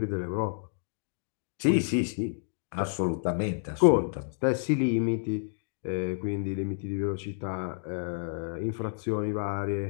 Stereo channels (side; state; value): right; silent; digital silence